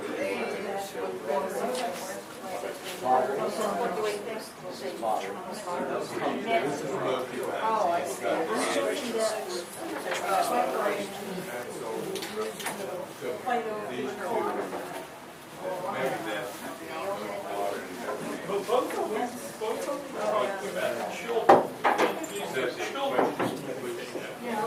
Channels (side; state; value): both; identical; correlation 1.00